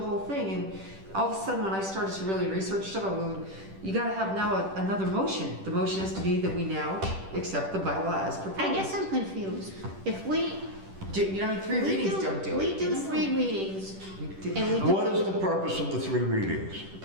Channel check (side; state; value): left; late; 10 ms